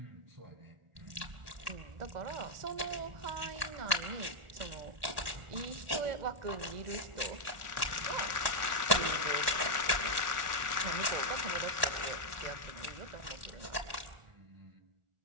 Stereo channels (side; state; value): left; late; 1.4 ms